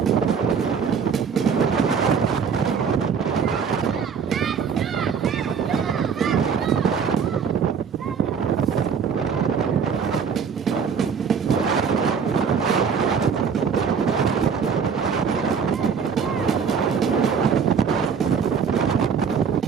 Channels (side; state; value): left; quieter; 6.5 dB